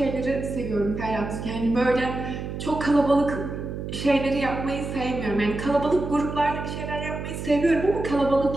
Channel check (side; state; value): right; noise; hum, 6 dB below the sound